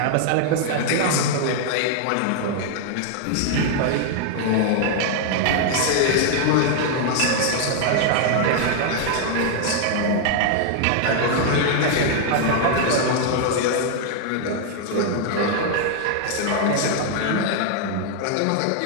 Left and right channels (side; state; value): both; different; correlation 0.00